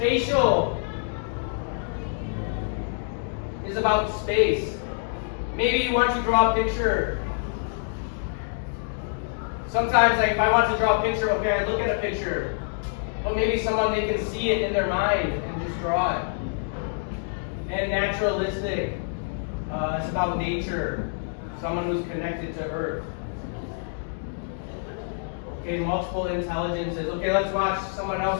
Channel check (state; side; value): silent; right; digital silence